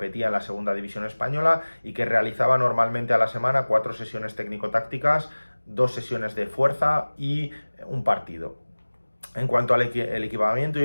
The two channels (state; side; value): inverted; both; correlation -1.00